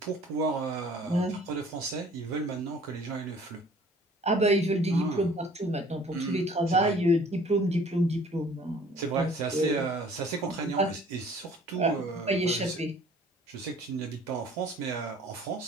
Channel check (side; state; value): both; normal; correlation 0.53